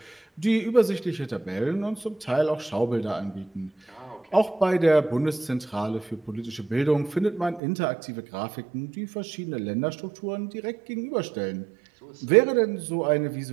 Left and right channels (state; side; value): drops out; left; at 7.6 s